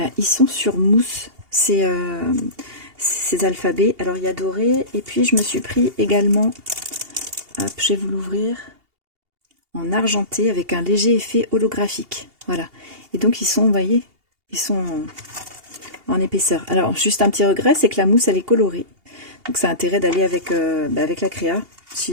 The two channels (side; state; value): left; late; 2.8 ms